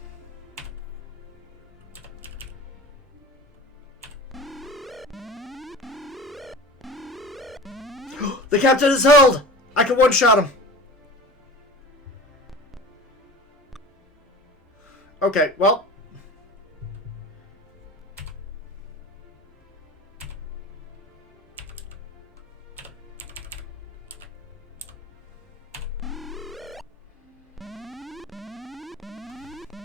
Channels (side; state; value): both; normal; correlation 0.37